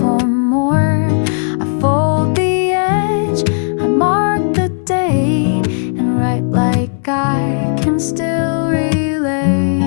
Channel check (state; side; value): silent; right; digital silence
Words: more. I fold the edge, I mark the date, and write like I